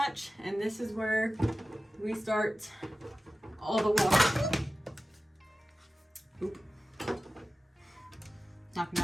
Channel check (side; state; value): both; normal; correlation 0.95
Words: and this is where we start all the water. Oop. Knocking